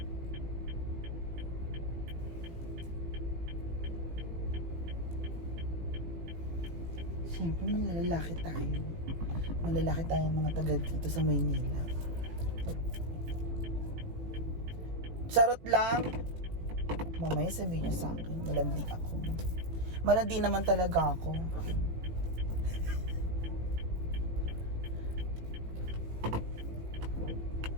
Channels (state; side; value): late; left; 18 ms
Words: Siyempre, malalaki tayo. Malalaki tayo mga taga dito sa Maynila. Charot lang. Mamaya sabihin niya sa akin, malandi ako. Malandi naman talaga ako.